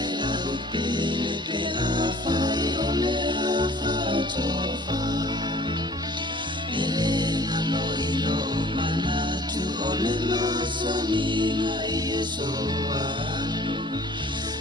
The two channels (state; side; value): normal; both; correlation 0.50